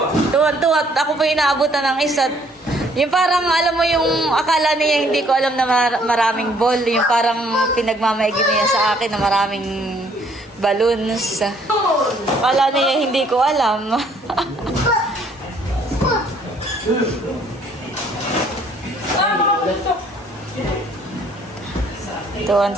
Tuwan-tuwa. At ako po yung naabutan ng isa. Yung parang, alam mo yung akala niya hindi ko alam na maraming ball. Yung parang pinagmamaigin niya sa akin na maraming balloons. Akala niya hindi ko alam.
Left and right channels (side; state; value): both; normal; correlation 0.63